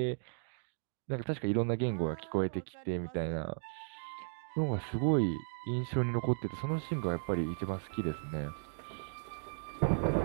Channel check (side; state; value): left; silent; digital silence